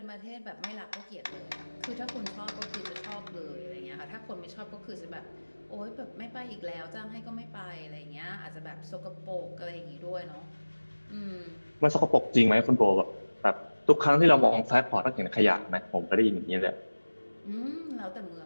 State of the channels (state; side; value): inverted; both; correlation -1.00